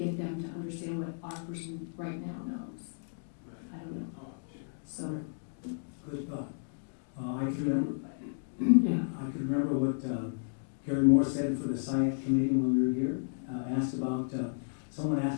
them to understand what our person right now knows. I don't know. Oh, sure. So, Good thought. I can remember, yeah, I can remember what Gary Moore said for the SIAC committee when we were here. Asked about, someone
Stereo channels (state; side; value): silent; right; digital silence